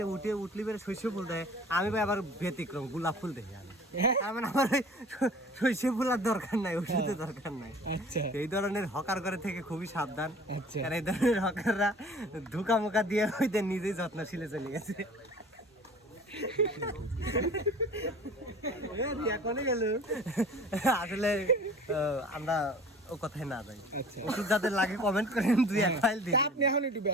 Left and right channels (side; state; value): both; normal; correlation 0.45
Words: উঠলি বেড়ে শস্য ফুল দেয়, আমি ভাই আবার ব্যতিক্রম গোলাপ ফুল দেখি আমি। তার মানে আমার ওই শস্য ফুল আর দরকার নাই, ওষুধের দরকার নাই। আচ্ছা এই ধরনের হকার করে থেকে খুবই সাবধান, আচ্ছা কারণ এই ধরনের হকাররা ধোকা মোকা দিয়ে হইতে নিজেই যত্নশীলে চলে গেছে। আসলে আমরা ও কথায় না যাই। আচ্ছা ওষুধ যাদের লাগে কমেন্ট করেন, 2-1 ফাইল দিন। তা আপনি এখন একটু